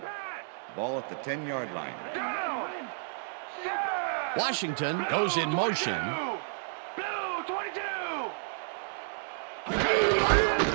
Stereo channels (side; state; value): left; silent; digital silence